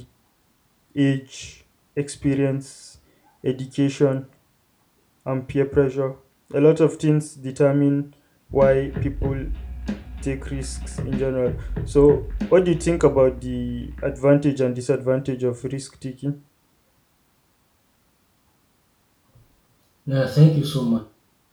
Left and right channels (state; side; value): identical; both; correlation 1.00